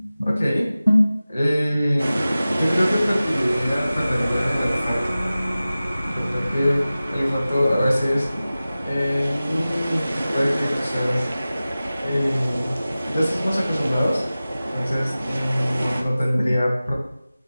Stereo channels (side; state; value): both; inverted; correlation -0.96